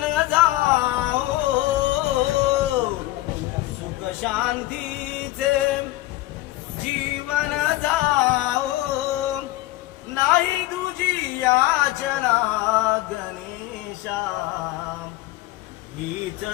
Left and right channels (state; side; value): quieter; right; 17.5 dB